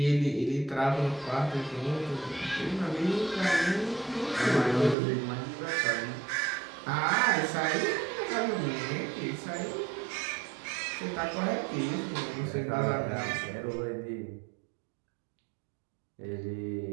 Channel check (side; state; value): left; drops out; at 5.0 s